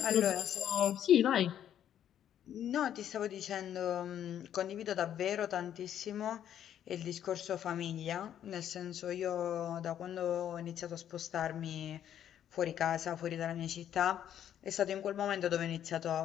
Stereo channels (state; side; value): quieter; right; 10.3 dB